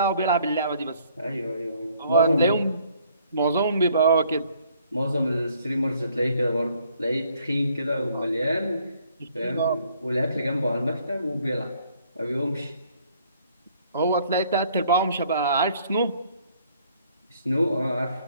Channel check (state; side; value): inverted; both; correlation -0.63